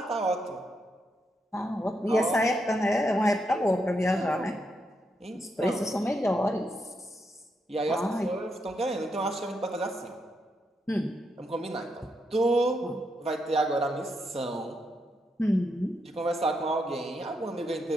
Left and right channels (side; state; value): both; normal; correlation 0.81